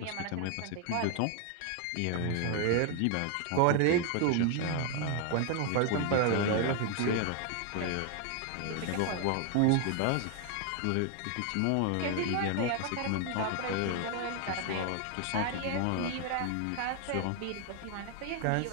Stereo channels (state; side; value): different; both; correlation 0.00